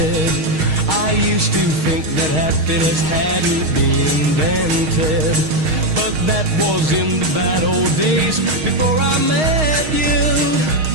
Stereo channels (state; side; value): late; left; 6.4 ms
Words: I used to think that happiness hadn't been invented, but that was in the bad old days before I met you.